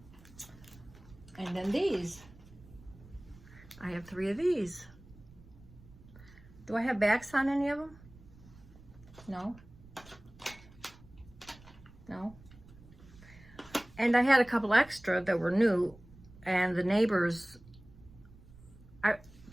And then these. I have 3 of these. Do I have backs on any of them? No. No. And I had a couple extra that were new, and the neighbors,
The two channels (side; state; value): right; noise; rumble, 22 dB below the sound